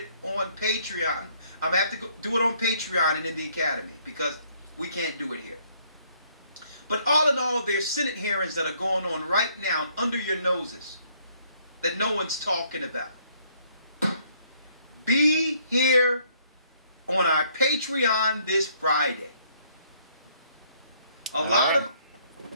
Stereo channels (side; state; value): both; inverted; correlation -0.66